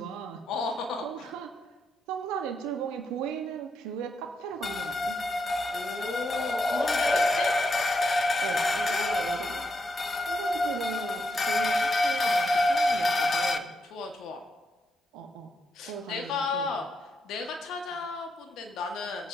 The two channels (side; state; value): both; normal; correlation 0.81